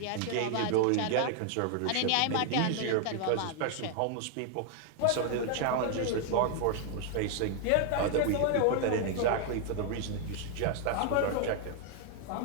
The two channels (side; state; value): both; different; correlation 0.00